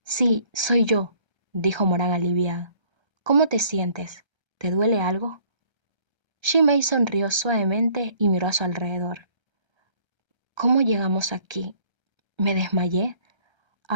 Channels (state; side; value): late; left; 1.3 ms